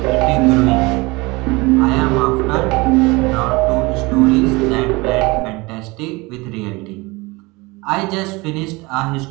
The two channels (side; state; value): left; quieter; 24.1 dB